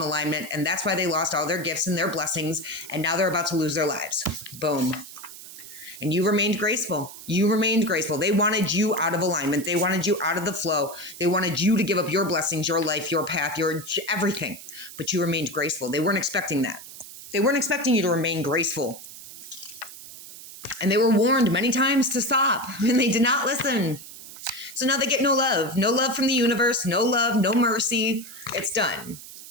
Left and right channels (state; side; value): noise; right; hiss, 15 dB below the sound